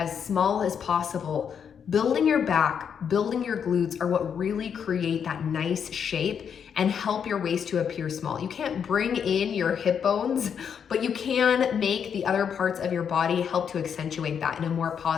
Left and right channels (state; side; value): quieter; right; 7.5 dB